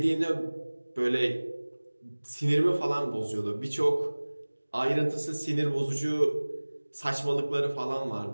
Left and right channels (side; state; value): both; inverted; correlation -1.00